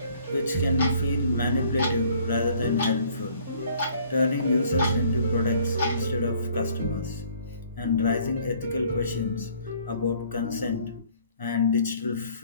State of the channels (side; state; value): both; inverted; correlation -0.58